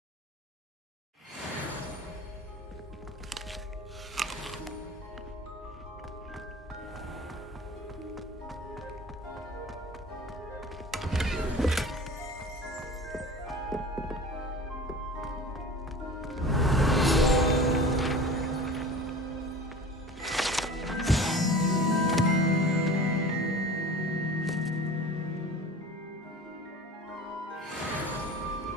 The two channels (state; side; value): normal; both; correlation 0.39